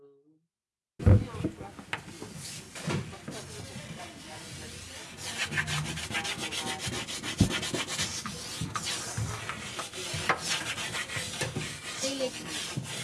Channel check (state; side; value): identical; both; correlation 1.00